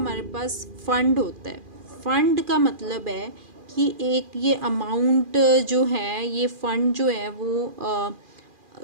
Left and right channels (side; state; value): left; late; 2.4 ms